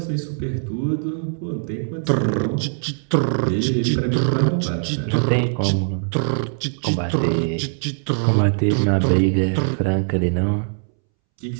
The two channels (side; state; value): left; silent; 65 dB below the other